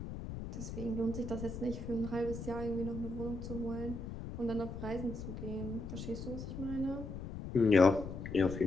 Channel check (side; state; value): left; noise; rumble, 7 dB below the sound